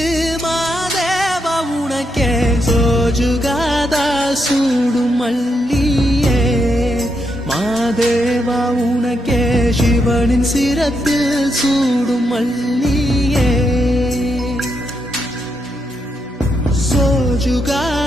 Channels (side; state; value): both; normal; correlation 0.81